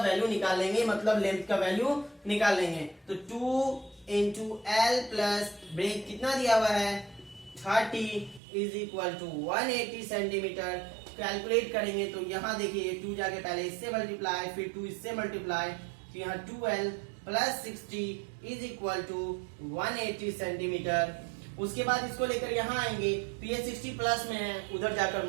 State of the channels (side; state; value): left; drops out; at 8.4 s